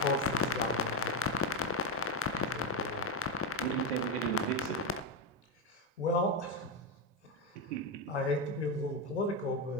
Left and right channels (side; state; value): both; normal; correlation 0.09